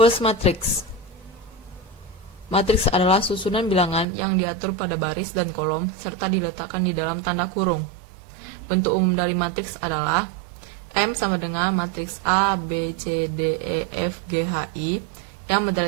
matrix. Matriks adalah susunan bilangan yang diatur pada baris dan kolom serta diletakkan di dalam tanda kurung. Bentuk umum dari matriks adalah M sama dengan matriks A, B, C, D, E, F, G, H, I. Yang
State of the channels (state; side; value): drops out; left; at 4.0 s